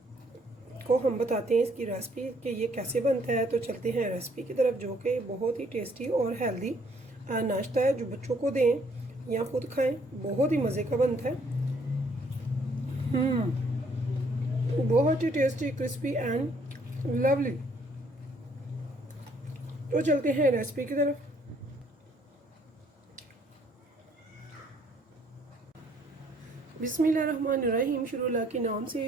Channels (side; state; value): both; normal; correlation 0.65